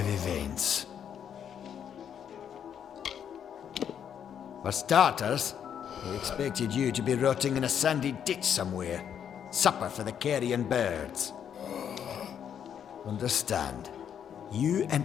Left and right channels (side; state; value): right; quieter; 8.6 dB